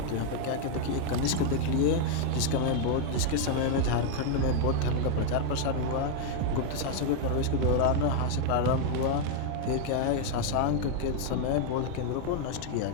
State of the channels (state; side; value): different; both; correlation 0.00